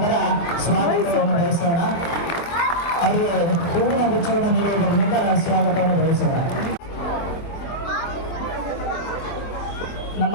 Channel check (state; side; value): late; right; 24 ms